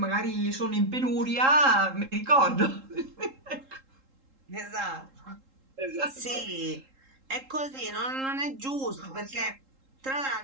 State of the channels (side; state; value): left; late; 3.7 ms